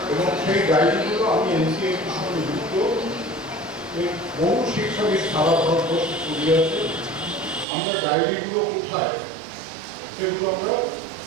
এবং সেই ডায়েরিগুলো আমি NCA বহু শিক্ষাবিদ সারা ভারতবর্ষে ছড়িয়ে আছে। আমরা ডায়েরিগুলো কোথায় সেগুলো আমরা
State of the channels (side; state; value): left; drops out; at 7.7 s